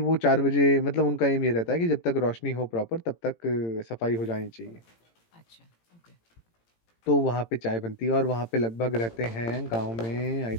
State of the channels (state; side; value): late; right; 18 ms